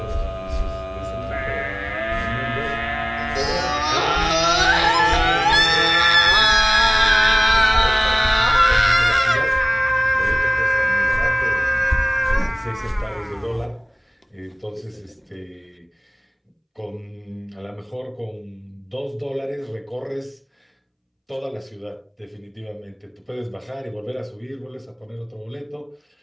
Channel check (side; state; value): both; identical; correlation 1.00